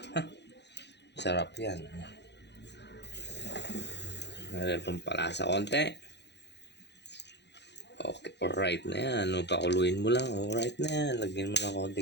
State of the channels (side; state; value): right; late; 0.50 ms